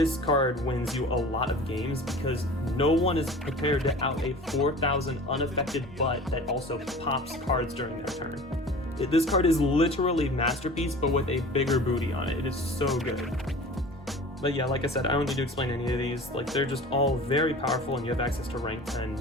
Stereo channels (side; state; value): both; normal; correlation 0.40